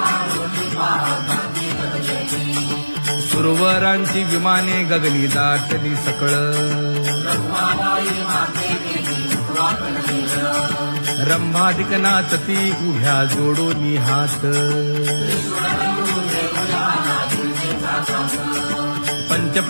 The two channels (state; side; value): inverted; both; correlation -1.00